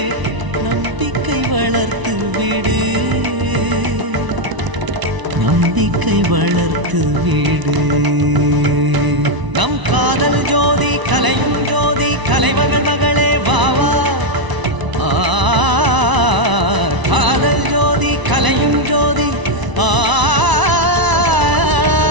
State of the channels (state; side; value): late; left; 1.0 ms